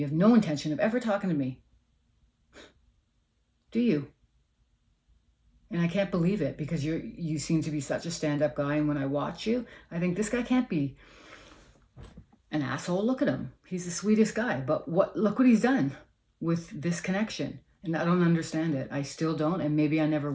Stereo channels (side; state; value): both; identical; correlation 1.00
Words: have no intention of ever talking to me. Do you? And I can't believe it, because you seem to be such a stand-up guy. And when I watch you, I think this guy can't be an asshole. Look at him. He's the sweetest guy. But look what he's done with this connection. And I don't understand it. I still don't, and maybe I never